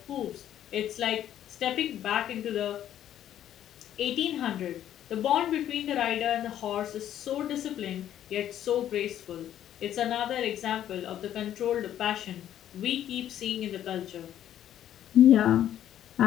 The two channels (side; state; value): right; quieter; 11.1 dB